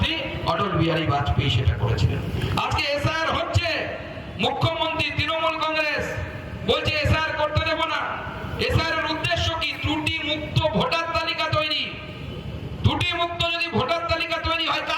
অটল বিহারী বাজপেয়ী সেটা করেছিলেন। আজকে এসআইআর হচ্ছে, মুখ্যমন্ত্রী তৃণমূল কংগ্রেস বলছে এসআইআর করতে দেব না। এসআইআর এর উদ্দেশ্য কি? ত্রুটি মুক্ত ভোটার তালিকা তৈরি। ত্রুটি মুক্ত যদি ভোটার তালিকা তৈরি হয়,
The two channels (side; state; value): both; identical; correlation 1.00